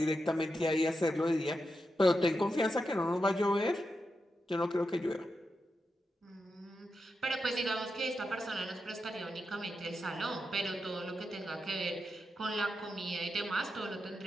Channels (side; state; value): both; normal; correlation 0.87